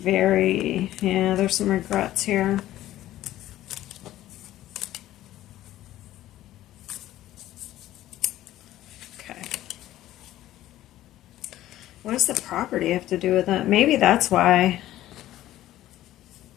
yeah, there's some regrets here. Okay. What does the property have to do with that? Maybe that's why.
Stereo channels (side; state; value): right; quieter; 14.2 dB